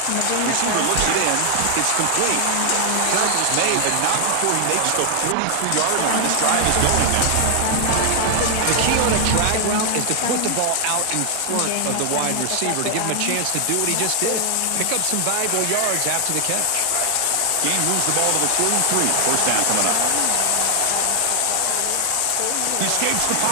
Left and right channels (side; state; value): both; different; correlation 0.00